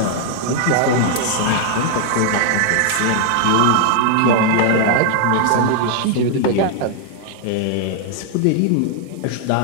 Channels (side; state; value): both; different; correlation 0.00